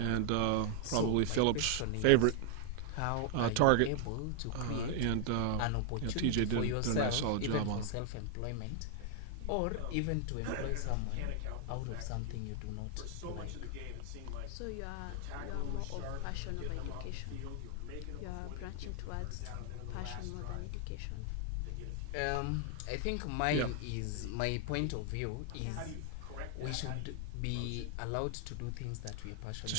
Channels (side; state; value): both; different; correlation 0.00